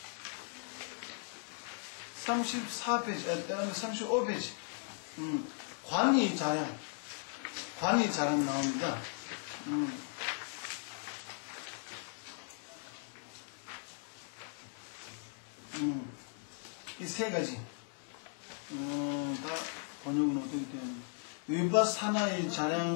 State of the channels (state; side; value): silent; right; 53 dB below the other